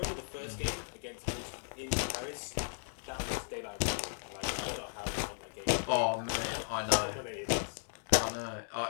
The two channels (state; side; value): silent; right; digital silence